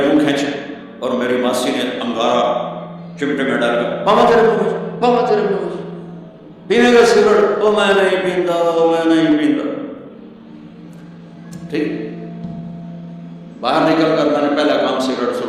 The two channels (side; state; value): both; identical; correlation 1.00